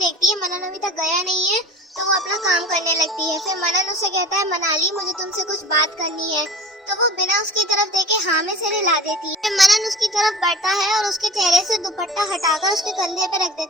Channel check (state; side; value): normal; both; correlation 0.40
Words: है मनन अभी तक गया नहीं है, तो वो अपना काम करने लगती है। फिर मनन उसे कहता है मनाली मुझे तुमसे कुछ बात करनी है, तो वो बिना उसकी तरफ देखे हाँ में सिर हिला देती है। फिर मनन उसकी तरफ बढ़ता है और उसके चेहरे से दुपट्टा हटाकर उसके कंधे पे रख